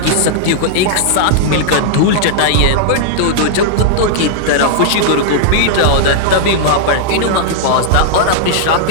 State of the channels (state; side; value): different; both; correlation -0.01